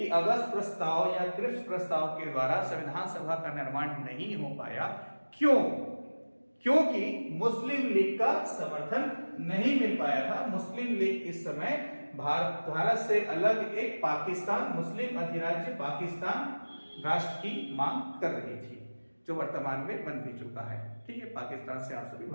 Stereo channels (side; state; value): both; inverted; correlation -1.00